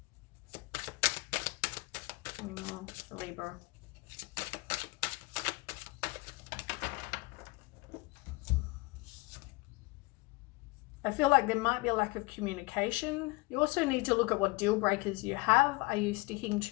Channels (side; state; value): right; quieter; 23.9 dB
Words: Any more for Libra? I feel like there might be a lack of communication. You also need to look at what deal breakers you have. Are you sticking